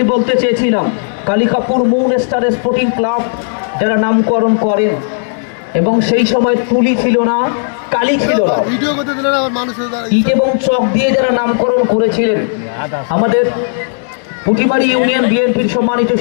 বলতে চেয়েছিলাম, Kalikapur moon star sporting club যারা নামকরণ করেন, এবং সেই সময় তুলি ছিল না, কালি ছিল না, ইট এবং চক দিয়ে যারা নামকরণ করেছিলেন, আমাদের পুটিমারি ইউনিয়ন বিএনপির সম্মানিত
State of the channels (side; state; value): right; silent; digital silence